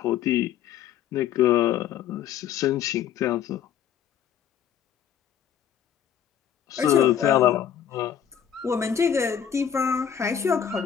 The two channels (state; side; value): quieter; right; 9.1 dB